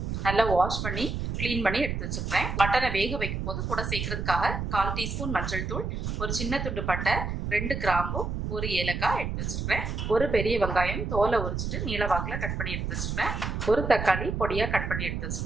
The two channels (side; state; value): right; noise; rumble, 3 dB below the sound